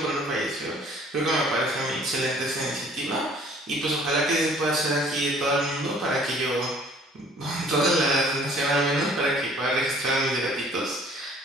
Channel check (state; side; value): normal; both; correlation 0.55